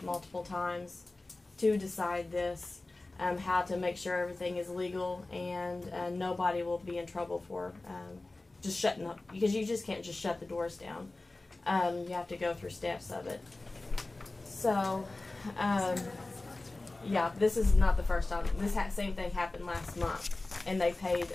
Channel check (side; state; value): right; quieter; 3.1 dB